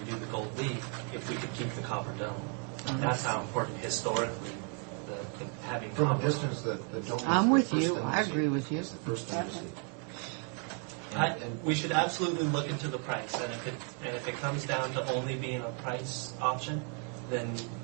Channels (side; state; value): left; quieter; 39.5 dB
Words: do the gold leaf if we could keep the copper dome. That's how important historically the having From copper. a distance, the dome is I'm the with first you. thing I see. agree with you. It's the first thing to see. We should absolutely look into the price, and if it comes down to only being a price option, then